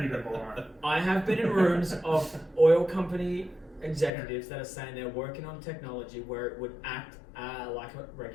you're going to bowl on. I have been in rooms of oil company executives that are saying they're working on technology where it would act like a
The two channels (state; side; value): drops out; right; at 4.1 s